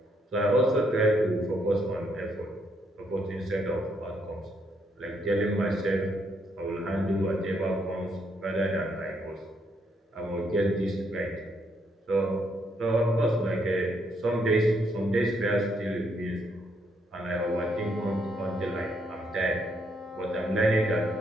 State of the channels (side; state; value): both; normal; correlation 0.74